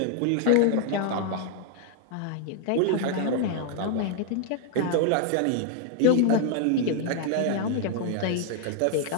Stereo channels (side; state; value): both; different; correlation 0.00